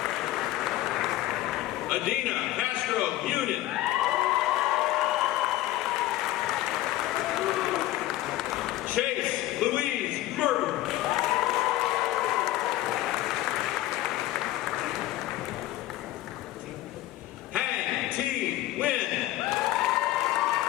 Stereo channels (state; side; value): quieter; right; 15.4 dB